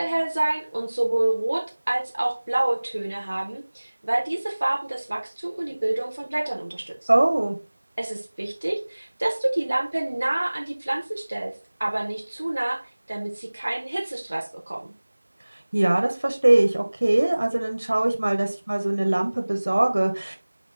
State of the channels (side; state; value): both; inverted; correlation -1.00